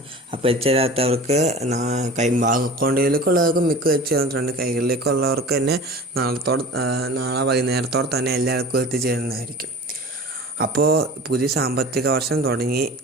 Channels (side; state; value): both; normal; correlation 0.38